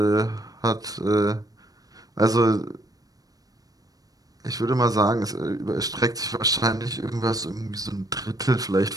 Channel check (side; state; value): left; late; 0.18 ms